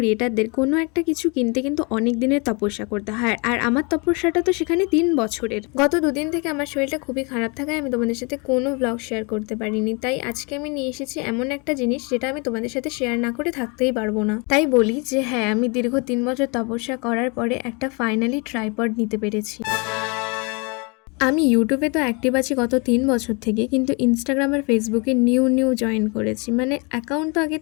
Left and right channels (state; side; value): quieter; right; 31.2 dB